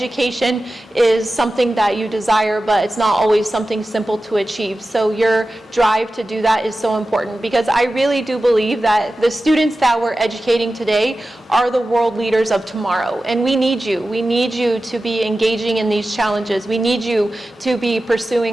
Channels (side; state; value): both; normal; correlation 0.94